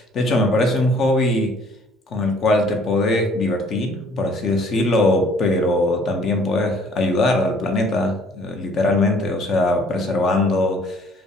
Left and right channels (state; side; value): normal; both; correlation 0.58